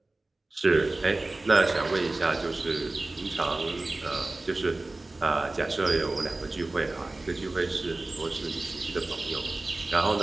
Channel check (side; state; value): left; quieter; 3.0 dB